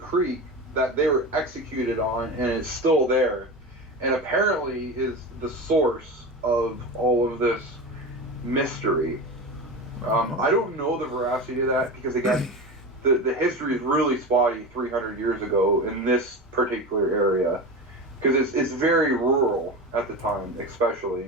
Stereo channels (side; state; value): both; normal; correlation 0.26